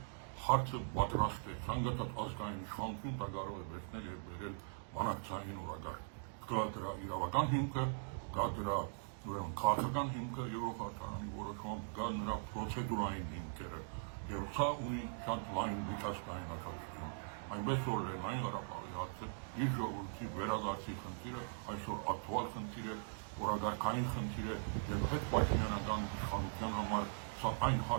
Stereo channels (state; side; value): silent; left; digital silence